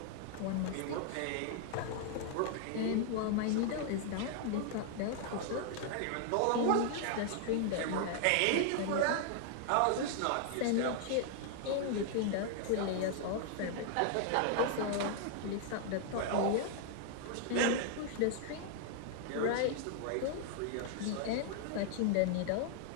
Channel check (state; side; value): different; both; correlation 0.00